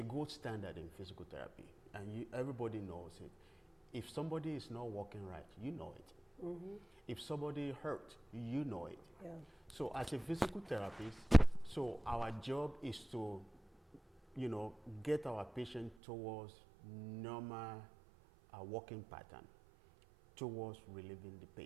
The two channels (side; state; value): left; drops out; at 16.0 s